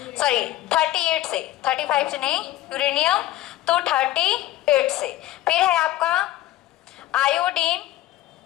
सॉरी 38 से, 35 से नहीं, यूरेनियम तो 38 से। फिर है आपका आयोडीन,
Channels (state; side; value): quieter; right; 15.1 dB